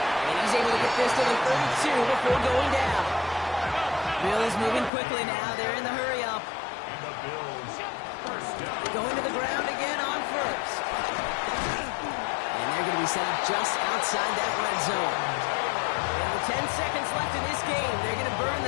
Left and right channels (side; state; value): right; drops out; at 4.9 s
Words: And he's able to get this to the 32 before going down. Bills moving quickly now. They're in the hurry up. Going to the ground again on 1st. And they're going to be be set up just outside that red zone. And with 10 seconds left in this game, they're going to burn